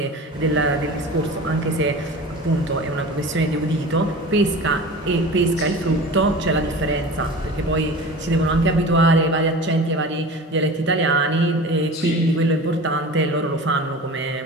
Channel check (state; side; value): normal; both; correlation 0.36